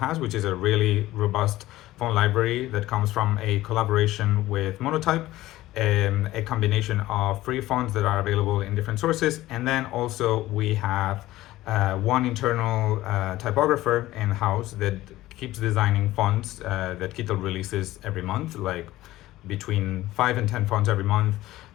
which is a really robust font library that comes from a collaboration with Monotype, a combination of free fonts that are available in different sources, and then also we have one internal typographer in-house that keeps designing fonts that Kittle releases every month, like between 5 and 10 fonts every month.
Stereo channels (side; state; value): right; quieter; 16.3 dB